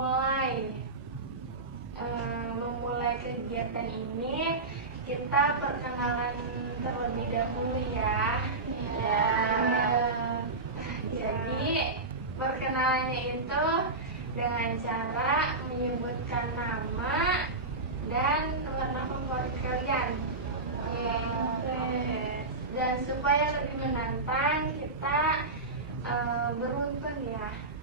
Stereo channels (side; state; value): left; quieter; 3.4 dB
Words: kegiatan ini, kita perkenalan terlebih dahulu ya. Jadi perkenalannya itu dengan cara menyebutkan nama dan warna favorit kalian. Dan supaya lebih menantang, kita beruntun ya.